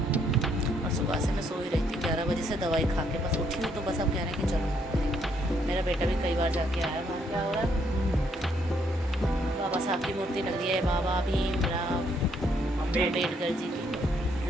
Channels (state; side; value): normal; both; correlation 0.71